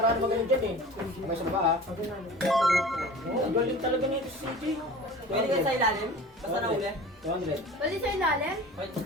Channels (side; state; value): both; normal; correlation 0.39